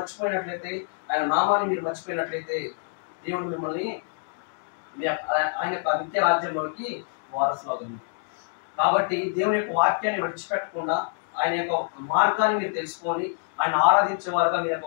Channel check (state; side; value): silent; right; digital silence